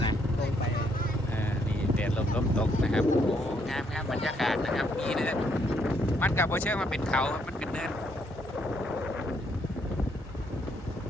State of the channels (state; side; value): normal; both; correlation 0.72